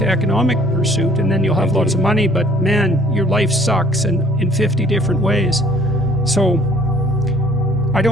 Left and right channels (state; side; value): normal; both; correlation 0.57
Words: economic pursuit, and then you'll have lots of money, but man, your life sucks in 50 different ways. So I